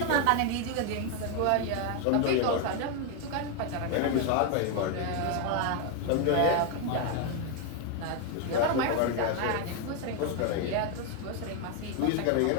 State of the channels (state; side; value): different; both; correlation 0.01